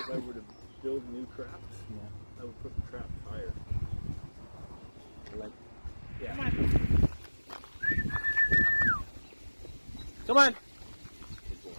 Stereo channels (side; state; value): both; inverted; correlation -1.00